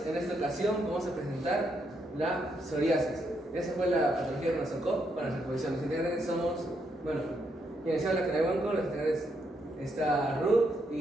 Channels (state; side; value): normal; both; correlation 0.78